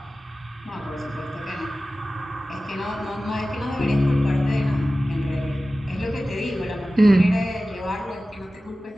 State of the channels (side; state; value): both; normal; correlation 0.95